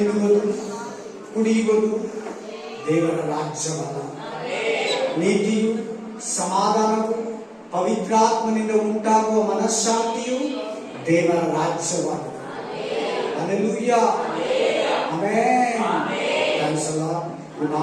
ಕುಡಿಯುವುದು ದೇವರ ರಾಜ್ಯವಲ್ಲ. ನೀತಿಯು, ಸಮಾಧಾನವು, ಪವಿತ್ರಾತ್ಮನಿಂದ ಉಂಟಾಗುವ ಮನಃಶಾಂತಿಯು ದೇವರ ರಾಜ್ಯವಾಗಿದೆ. Hallelujah, amen. Thanks a lord. ಈ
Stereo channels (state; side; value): identical; both; correlation 1.00